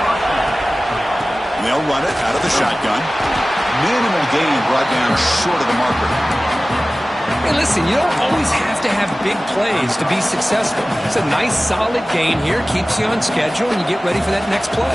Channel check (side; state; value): both; normal; correlation 0.97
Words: And they'll run it out of the shotgun. Minimal gain brought down short of the marker. Hey, listen, you don't always have to have big plays to be successful. It's a nice, solid gain here. Keeps you on schedule, and you get ready for that next